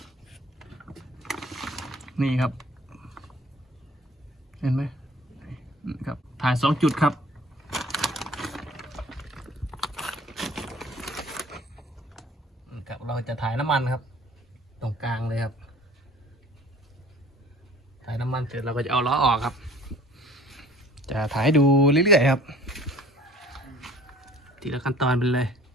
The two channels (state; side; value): normal; both; correlation 0.50